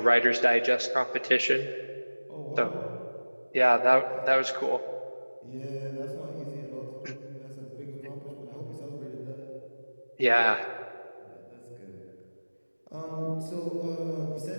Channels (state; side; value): inverted; both; correlation -1.00